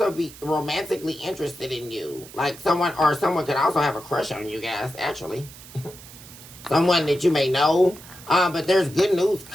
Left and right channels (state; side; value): noise; right; hiss, 18 dB below the sound